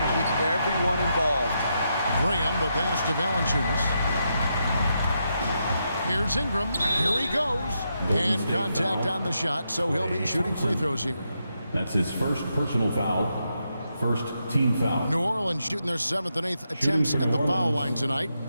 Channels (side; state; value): both; inverted; correlation -0.83